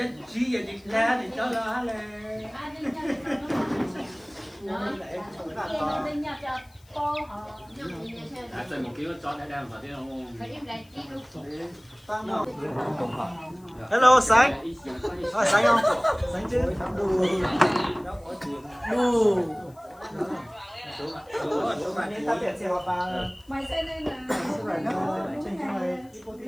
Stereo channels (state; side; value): noise; left; hiss, 29 dB below the sound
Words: chỉ vậy thì ra thì cháu là là chơi một kiểu cho đã đang vào thế không? hello sáng sáng không sáng chứ Mày sẽ lên là